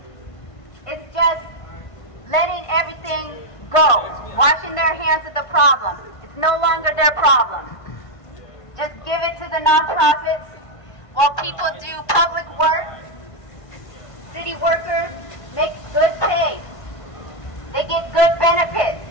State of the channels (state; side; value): late; right; 1.5 ms